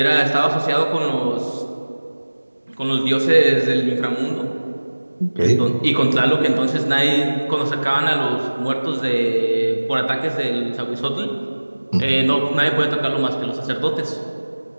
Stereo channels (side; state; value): both; inverted; correlation -1.00